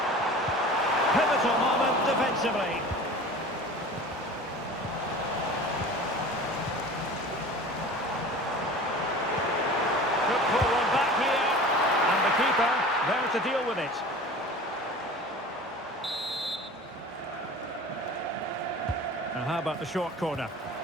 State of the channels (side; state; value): both; normal; correlation 0.39